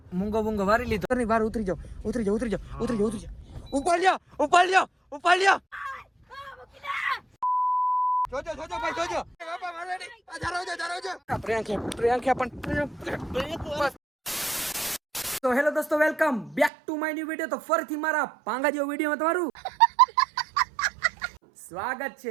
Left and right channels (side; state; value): left; drops out; at 16.7 s